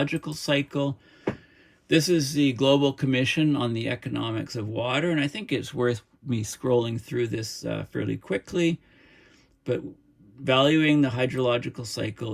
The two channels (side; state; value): both; identical; correlation 1.00